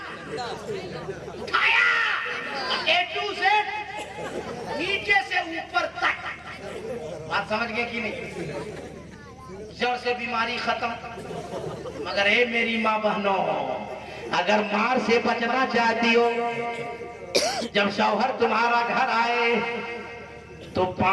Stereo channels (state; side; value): identical; both; correlation 1.00